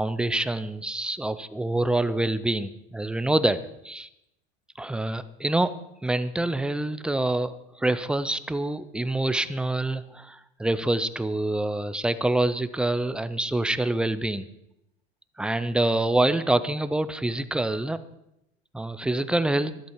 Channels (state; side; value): normal; both; correlation 0.89